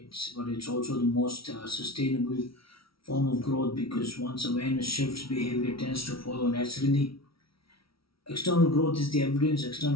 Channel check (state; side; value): late; right; 0.75 ms